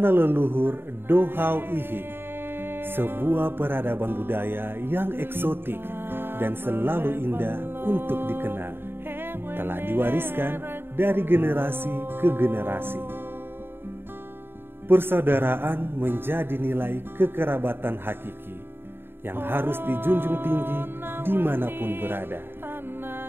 leluhur Dohau Ihi, sebuah peradaban budaya yang eksotik dan selalu indah untuk dikenal, telah diwariskan dari generasi ke generasi. Persaudaraan menjadi nilai kekerabatan hakiki yang harus dijunjung tinggi dimanapun berada,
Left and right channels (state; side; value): late; left; 0.11 ms